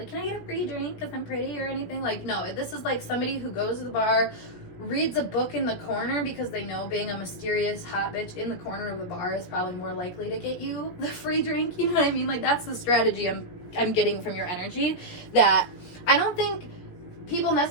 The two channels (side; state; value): right; late; 17 ms